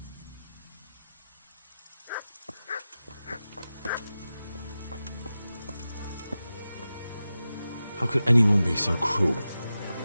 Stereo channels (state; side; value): inverted; both; correlation -0.94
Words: How could anyone be so cruel?